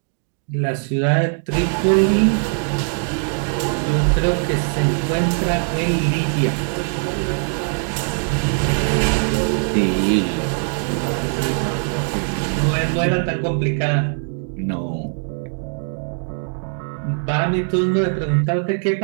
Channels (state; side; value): silent; left; 65 dB below the other